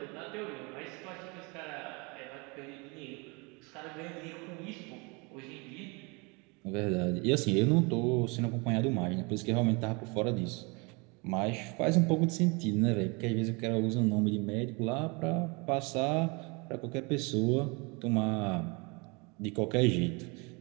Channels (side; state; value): left; quieter; 29.3 dB